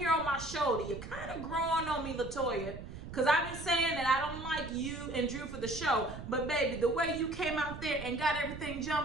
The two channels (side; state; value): right; noise; rumble, 11 dB below the sound